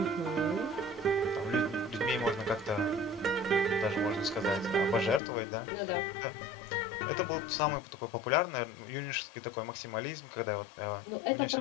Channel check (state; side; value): drops out; right; at 5.2 s